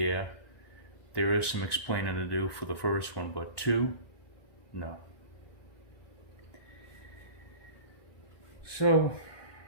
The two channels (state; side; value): late; right; 1.1 ms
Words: there is some explaining to do for the first one, but two, no. So